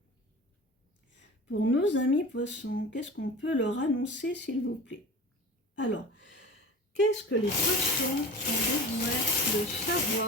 Pour nos amis poissons, qu'est-ce qu'on peut leur annoncer, s'il vous plaît? Alors, qu'est-ce que les poissons ont besoin de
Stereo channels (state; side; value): normal; both; correlation 0.36